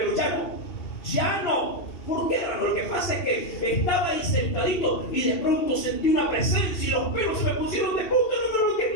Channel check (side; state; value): right; late; 2.7 ms